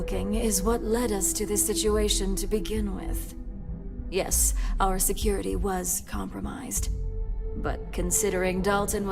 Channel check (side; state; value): both; identical; correlation 1.00